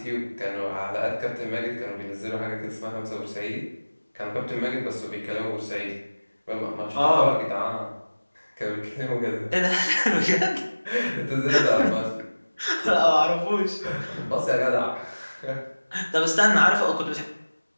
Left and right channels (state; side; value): inverted; both; correlation -1.00